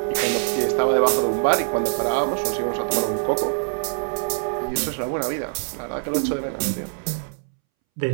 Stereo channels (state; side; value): silent; left; 63 dB below the other